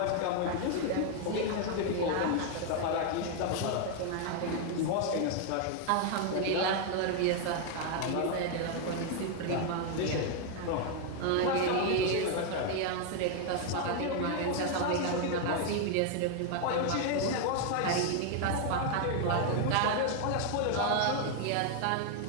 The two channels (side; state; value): both; different; correlation 0.00